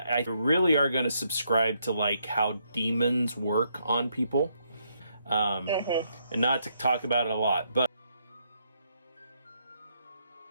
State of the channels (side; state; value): both; inverted; correlation -0.76